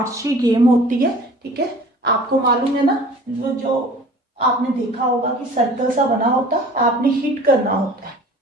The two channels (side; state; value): both; normal; correlation 0.45